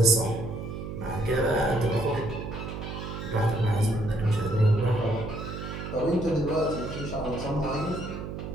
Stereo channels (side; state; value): right; noise; hum, 7 dB below the sound